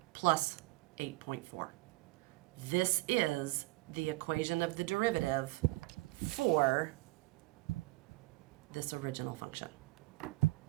plus 8.4. This is the equation of the derivative for this original function.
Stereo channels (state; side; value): quieter; left; 21.1 dB